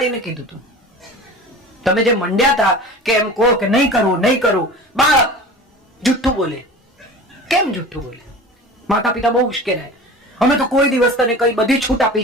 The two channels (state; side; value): normal; both; correlation 0.37